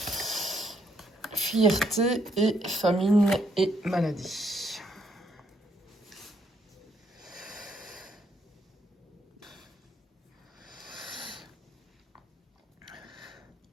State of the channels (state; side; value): normal; both; correlation 0.72